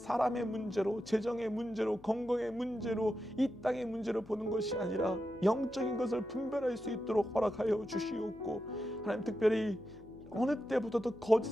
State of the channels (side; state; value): left; noise; hum, 22 dB below the sound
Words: 문제로, 재정의 문제로, 건강의 문제로, 이 땅의 문제로 보는 것이 아니라 영적인 것을 분별할 수 있도록 허락하여 주시옵고, 하나님, 특별히 어느 때보다도